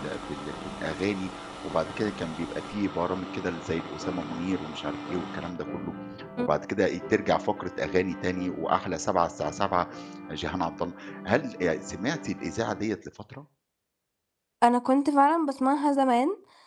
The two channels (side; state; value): both; identical; correlation 1.00